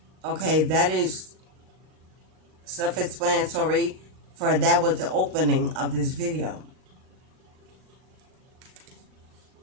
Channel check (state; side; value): late; left; 38 ms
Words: Okay, that is self-explanatory, for that was the opening of this video.